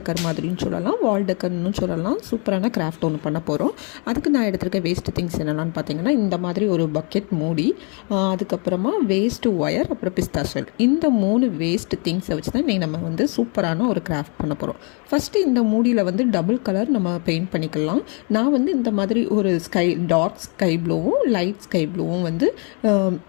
மாதிரின்னு சொல்லலாம், வால் டெக்கர்னு சொல்லலாம், சூப்பரான கிராஃப்ட் ஒன்று பண்ண போகிறோம். அதுக்கு நான் எடுத்துருக்க வேஸ்ட் திங்ஸ் என்னென்னு பார்த்தீங்கன்னா, இந்த மாதிரி ஒரு பக்கெட் மூடி, அதுக்கப்புறமா வேஸ்ட்டு ஒயர், அப்புறம் பிஸ்தா ஷெல். இந்த 3 வேஸ்ட் திங்ஸை வச்சு தான் இன்றைக்கி நம்ம வந்து சூப்பரான ஒரு கிராஃப்ட் பண்ண போகிறோம். ஃபஸ்ட்டு இந்த மூடியில் வந்து டபுள் கலர் நம்ம பெயிண்ட் பண்ணிக்கலாம். நான் வந்து இந்த மாதிரி ஒரு டார்க் ஸ்கை ப்ளூவும் லைட் ஸ்கை ப்ளூவும் வந்து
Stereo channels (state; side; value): quieter; right; 35.5 dB